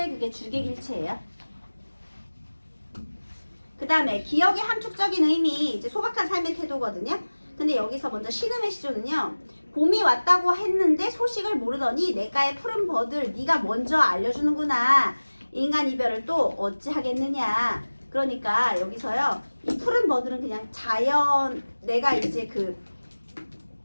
그게 주객일체예요. 그 다음에 기억의 함축적인 의미, 이제 소박한 삶의 태도거든요. 근데 여기서 먼저 신음의 시조는요. 봄이 왔다고 했는데 소식을 모르더니 내가의 푸른 버들 네가 먼저 알려주는구나. 인간 이별을 또 어찌하겠느냐. 그러니까 여기서요. 이 푸른 버들은 그냥 자연, 내가 이제 그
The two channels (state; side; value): inverted; both; correlation -1.00